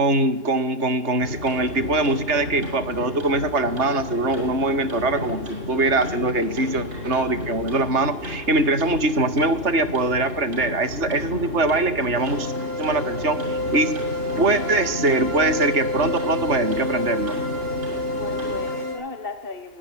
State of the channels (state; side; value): late; left; 2.9 ms